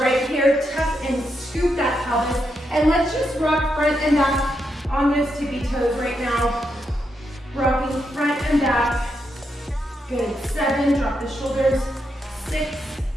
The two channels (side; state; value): both; normal; correlation 0.83